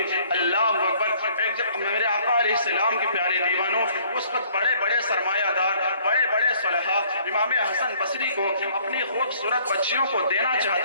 अल्लाह अकबर। एक जब मेरे आका अलैहिस्सलाम के प्यारे दीवानों, उस वक्त बड़े सरमायादार, बड़े सलहा इमाम हसन बसरी को अपनी खूबसूरत बच्चियों को देना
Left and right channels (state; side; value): inverted; both; correlation -0.60